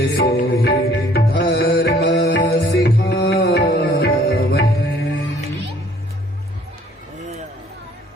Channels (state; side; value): normal; both; correlation 0.58